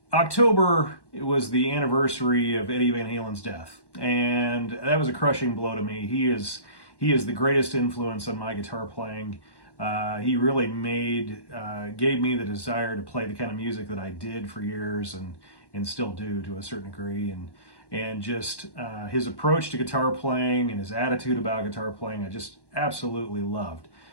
October, it was the anniversary of Eddie Van Halen's death, and that was a crushing blow to me. He is the greatest influence on my guitar playing. He really gave me the desire to play the kind of music that I did for years and still do to a certain degree, and just his approach to guitar playing and his attitude about guitar playing, I just absolutely loved.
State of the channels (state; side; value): late; right; 1.1 ms